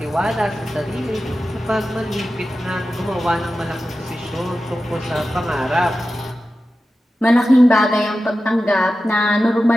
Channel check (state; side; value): normal; both; correlation 0.93